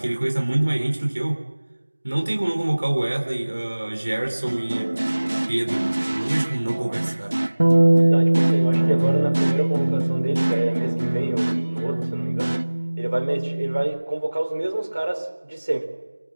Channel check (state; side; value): inverted; both; correlation -1.00